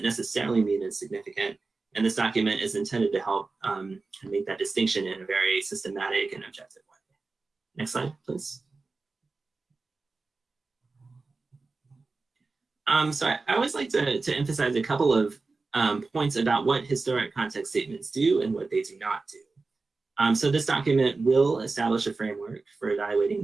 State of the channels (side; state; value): left; quieter; 3.9 dB